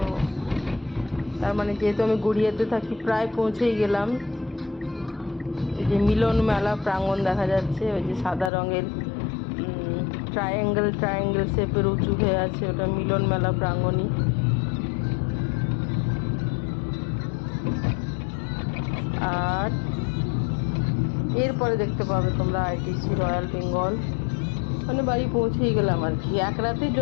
তার মানে যেহেতু আমি গড়িয়াতে থাকি, প্রায় পৌঁছেই গেলাম। এই যে মিলন মেলা প্রাঙ্গণ দেখা যাচ্ছে, ওই যে সাদা রঙের ট্রায়াঙ্গেল শেপের উঁচু হয়ে আছে, ওটা মিলন মেলা প্রাঙ্গণই। আর এরপরে দেখতে পাবে তোমরা আইটিসি রয়্যাল বেঙ্গল। মানে বাড়ি পৌঁছেই গেলাম আর কি, এক রাতের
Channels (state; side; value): drops out; right; at 8.5 s